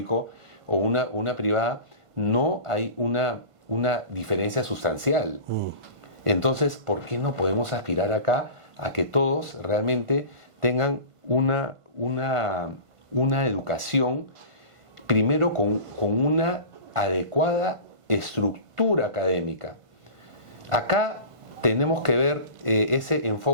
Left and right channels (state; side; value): late; left; 1.5 ms